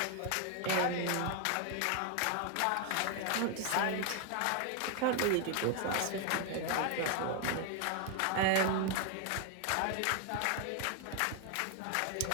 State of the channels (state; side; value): different; both; correlation 0.01